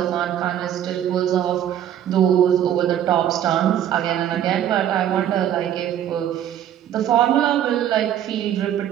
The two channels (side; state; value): left; quieter; 10.6 dB